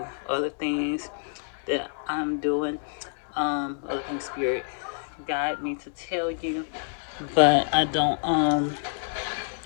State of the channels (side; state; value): right; silent; digital silence